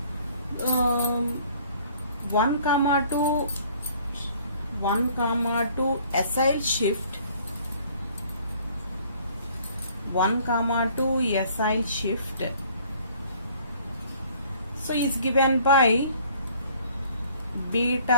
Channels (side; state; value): both; inverted; correlation -0.56